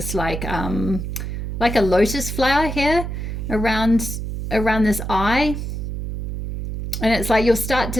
like a lotus flower here around this eye. And it's like you'll start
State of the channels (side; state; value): right; noise; hum, 5 dB below the sound